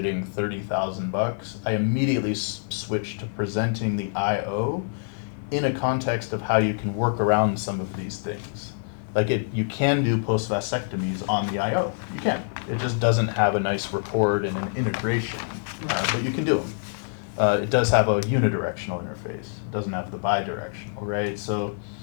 $30,000, I immediately switch to presenting the IO in a context of how you can work around some of these things. Like you can do post-vasectomies on the IO. You can. It just doesn't have a nice report and an integration, but you can do them. It does have a unidirectional interface. It doesn't have the bidirectional, right? So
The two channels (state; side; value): silent; right; 61 dB below the other